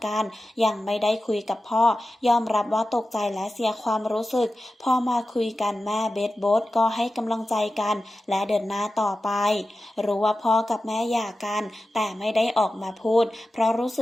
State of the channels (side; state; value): both; normal; correlation 0.93